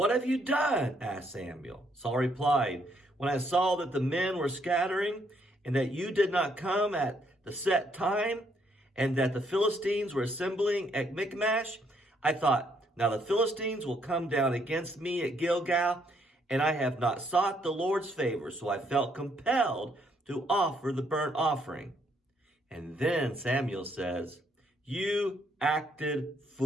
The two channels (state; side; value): normal; both; correlation 0.71